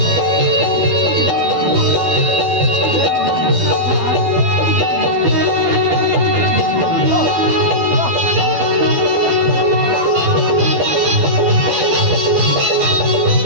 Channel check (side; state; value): left; late; 12 ms